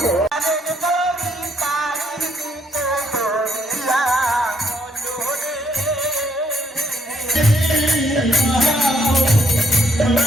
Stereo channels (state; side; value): normal; both; correlation 0.70